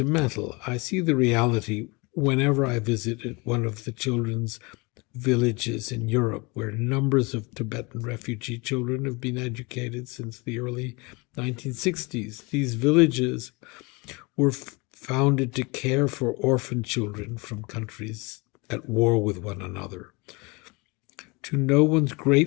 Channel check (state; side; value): quieter; right; 27.0 dB